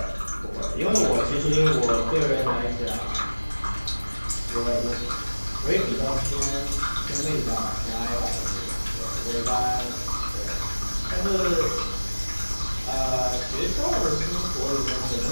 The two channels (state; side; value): inverted; both; correlation -1.00